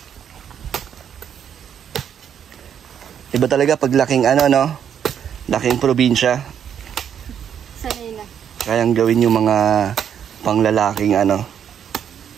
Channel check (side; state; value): left; quieter; 8.6 dB